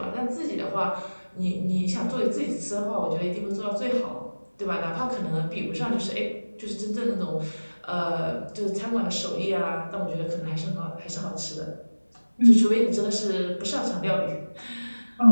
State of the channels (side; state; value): both; inverted; correlation -1.00